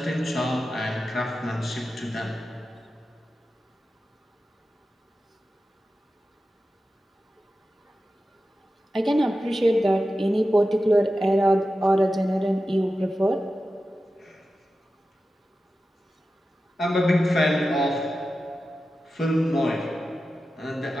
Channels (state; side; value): normal; both; correlation 0.93